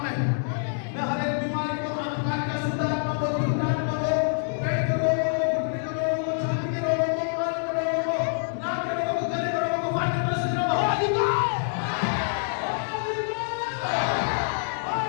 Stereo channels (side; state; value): right; silent; digital silence